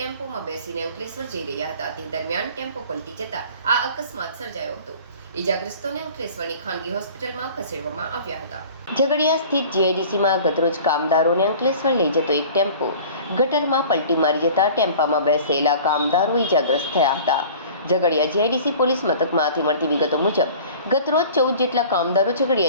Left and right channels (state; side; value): inverted; both; correlation -0.44